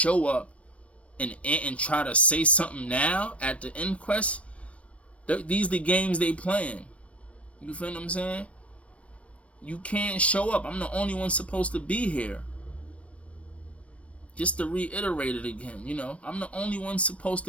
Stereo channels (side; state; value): right; late; 0.063 ms